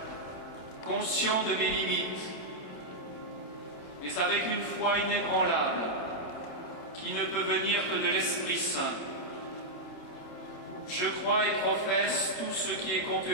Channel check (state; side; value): late; right; 27 ms